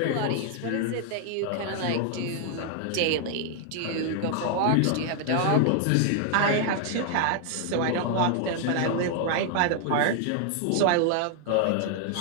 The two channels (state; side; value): different; both; correlation 0.00